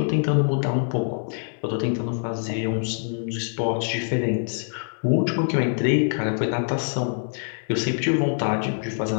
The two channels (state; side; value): silent; right; digital silence